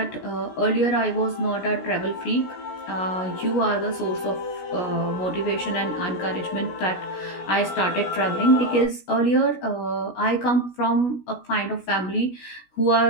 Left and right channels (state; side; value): late; right; 16 ms